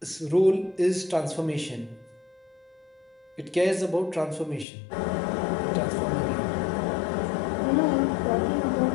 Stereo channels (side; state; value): right; drops out; at 4.7 s